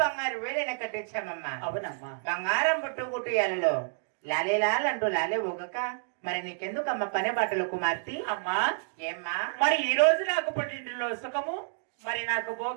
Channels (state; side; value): silent; left; digital silence